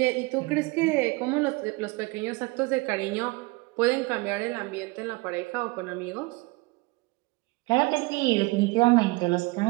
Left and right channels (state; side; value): quieter; left; 24.4 dB